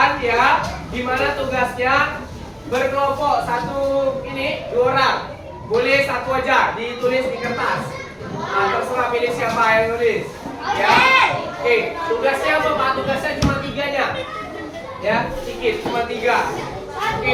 ya, dimana tugasnya berkelompok dua orang. Boleh satu aja ditulis di kertas. Nah, terserah pilih siapa yang nulis. Ya, oke. Tugasnya apa Pak? Tugasnya cuma 3-nya. Ya, sedikit, cuma 3.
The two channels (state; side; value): identical; both; correlation 1.00